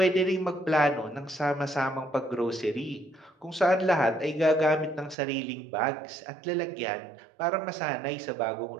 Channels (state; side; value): drops out; left; at 5.2 s